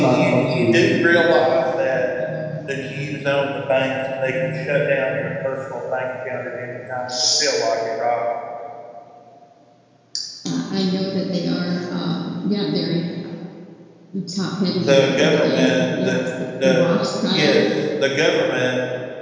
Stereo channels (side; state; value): both; identical; correlation 1.00